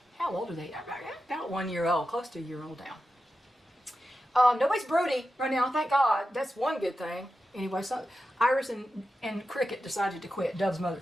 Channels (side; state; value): both; normal; correlation 0.91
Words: how old are they? About 1 year old, close to a year old now. Nobody's broody right now, thank God. That's one good thing. Anyway, so Iris and Cricket decided to quit. Dove's mother,